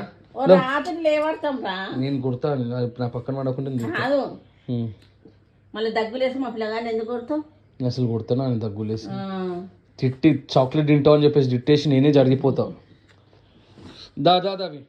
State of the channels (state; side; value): identical; both; correlation 1.00